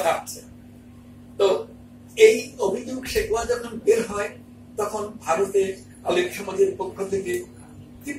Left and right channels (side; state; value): both; identical; correlation 1.00